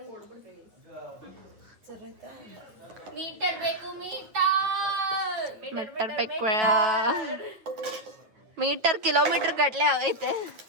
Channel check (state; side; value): late; left; 9.1 ms